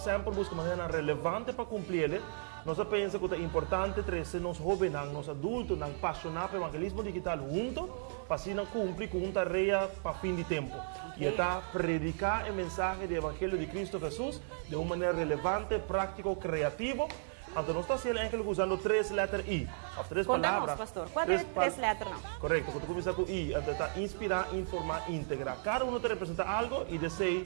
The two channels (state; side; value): silent; left; digital silence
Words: buscando maneira relevante para cumprir, nós pensamos que é importante trazer os jovens, os adultos, apaixonados pelo evangelismo digital juntos, para assim cumprir com uma tarefa para fim de tempo. E está predicar a mensagem do Evangelho de Cristo Jesus de uma maneira relevante, prática, criativa. Então, nós estamos usando 3 letras I. As 3 palavras. Pastor. Qual é 3 letras? Não? Correto, quando começa com I, então está inspirar, informar, integrar. Cada um te representa algo e